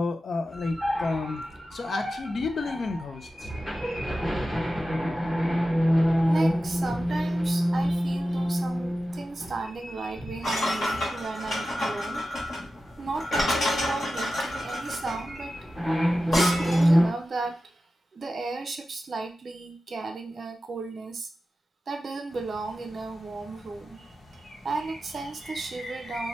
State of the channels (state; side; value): normal; both; correlation 0.93